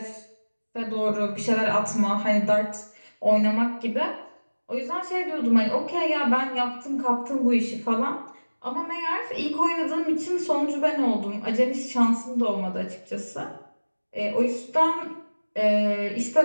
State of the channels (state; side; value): inverted; both; correlation -1.00